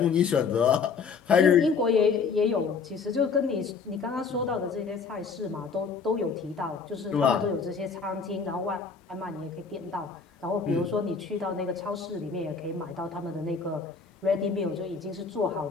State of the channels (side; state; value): right; quieter; 5.3 dB